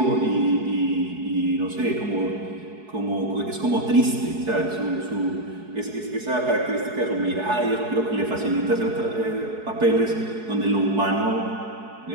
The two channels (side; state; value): left; late; 4.7 ms